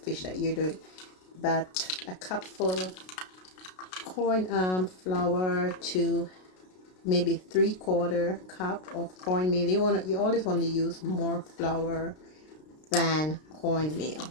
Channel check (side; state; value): right; late; 33 ms